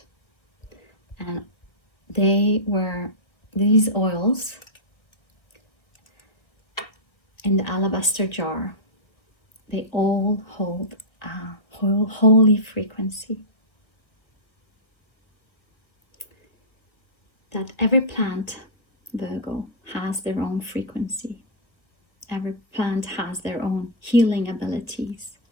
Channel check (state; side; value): late; right; 1.6 ms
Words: And these oils in the alabaster jar, they all hold a holy frequency. That every plant, Virgo, has their own frequency. Every plant has their own healing abilities